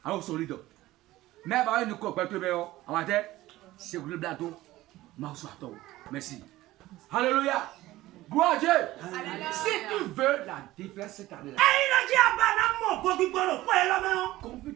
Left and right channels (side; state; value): left; quieter; 16.8 dB